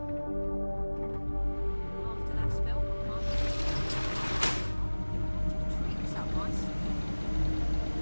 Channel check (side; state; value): both; inverted; correlation -1.00